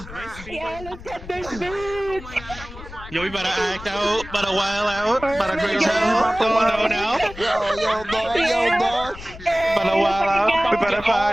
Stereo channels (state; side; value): noise; left; rumble, 15 dB below the sound